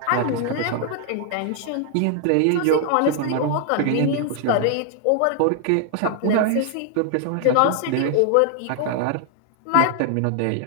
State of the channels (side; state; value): both; different; correlation 0.00